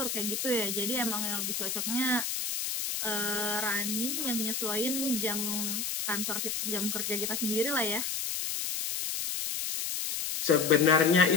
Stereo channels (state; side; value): noise; left; hiss, 2 dB below the sound